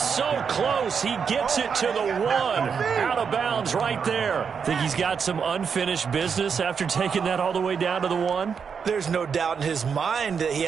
close, he gets it to the 1. Out of bounds right there. Think he's got some unfinished business after taking that all the way down to the 1? There's no doubt in his mind that he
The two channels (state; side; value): quieter; left; 6.4 dB